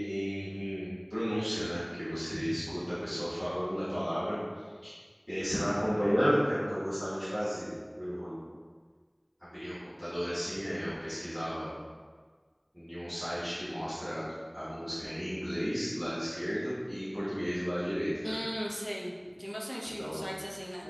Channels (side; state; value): both; identical; correlation 1.00